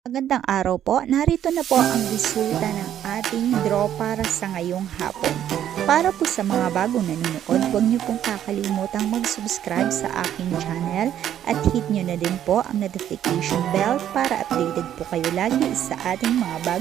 Magandang araw po. Narito na po ang resulta ng ating draw para sa ngayong hapon. Para po sa mga bagong nanonood, huwag niyo pong kakalimutang mag-subscribe sa aking channel at hit niyo na din po ang notification bell para updated po kayo lagi sa ating mga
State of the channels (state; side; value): quieter; left; 10.7 dB